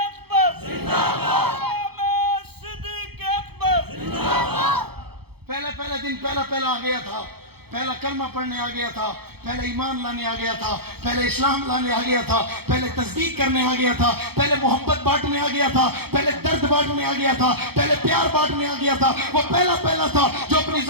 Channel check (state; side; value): late; left; 0.96 ms